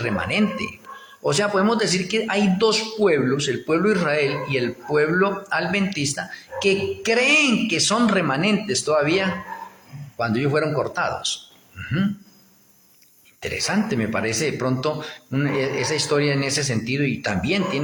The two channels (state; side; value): identical; both; correlation 1.00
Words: O sea, podemos decir que hay dos pueblos, el pueblo de Israel y el pueblo adventista, que creen que son remanentes todavía cuando ellos fueron cortados. Interesante, me parece de pronto esa historia en ese sentido, y también